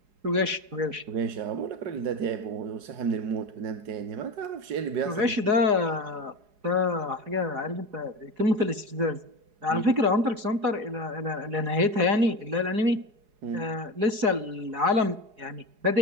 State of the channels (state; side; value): late; left; 4.8 ms